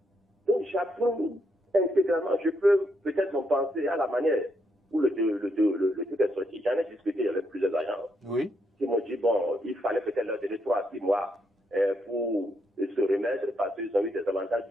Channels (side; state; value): both; normal; correlation 0.78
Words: Donc j'approuve intégralement. Je peux peut-être en penser à la manière où le truc est sorti. J'en ai discuté avec plusieurs agents. Oui. Qui m'ont dit, bon, il fallait peut-être leur donner 3 à 6 mois pour se remettre parce qu'ils ont eu des avantages